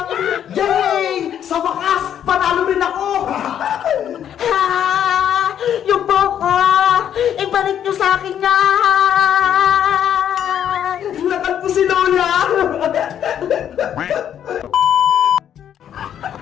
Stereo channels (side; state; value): right; quieter; 9.6 dB